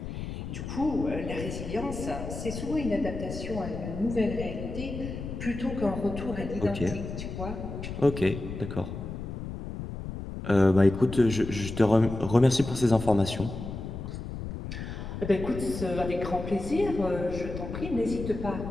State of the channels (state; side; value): noise; left; rumble, 7 dB below the sound